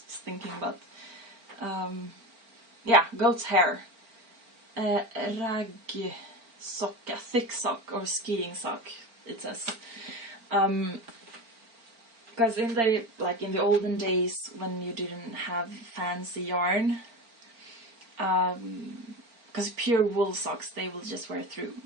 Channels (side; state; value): left; late; 4.4 ms